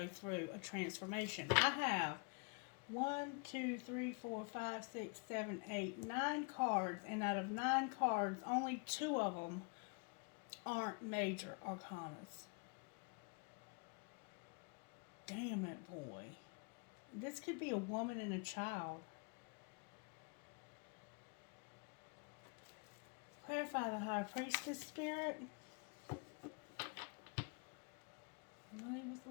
through a transformation. I have 1, 2, 3, 4, 5, 6, 7, 8, 9 cards, and out of 9 cards, only 2 of them aren't major arcanas. Damn it, boy. This could be a woman and a child. Clarify the High Priestess, Spirit. He was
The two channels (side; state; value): right; quieter; 34.0 dB